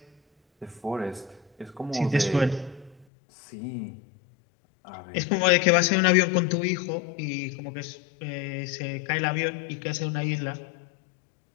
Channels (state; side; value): drops out; right; at 3.1 s